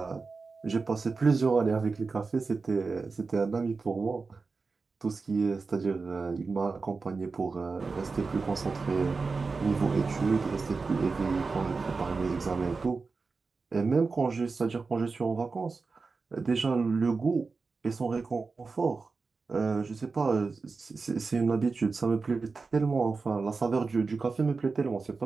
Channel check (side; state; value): left; quieter; 4.3 dB